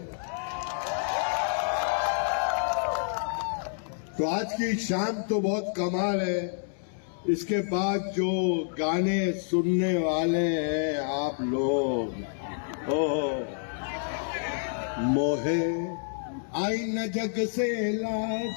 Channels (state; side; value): silent; right; digital silence